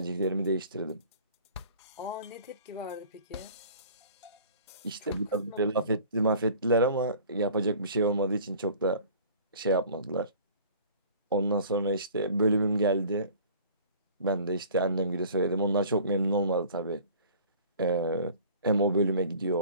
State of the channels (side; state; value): both; inverted; correlation -0.47